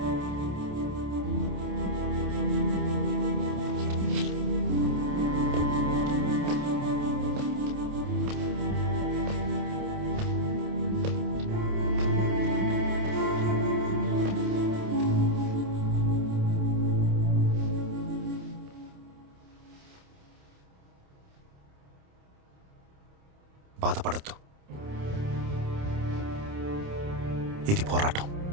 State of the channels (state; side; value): late; left; 28 ms